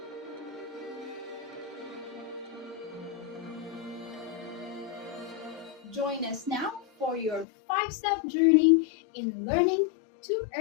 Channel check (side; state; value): right; drops out; at 7.5 s